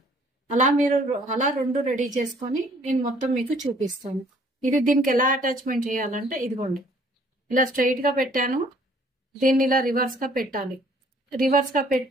అలా మీరు అలా 2 రెడీ చేసుకొని నేను మొత్తం మీకు చూపిస్తాను. ఇది దీనికి ఎలా అటాచ్మెంట్ చేయాలంటే ఇదిగోండి ఇలా స్ట్రైట్ గా పెట్టాను, దీన్ని ఇలా రివర్స్ గా పెట్టాలి. రివర్స్ గా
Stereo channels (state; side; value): normal; both; correlation 0.59